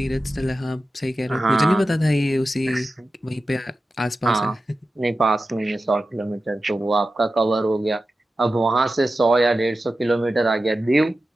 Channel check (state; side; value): normal; both; correlation 0.93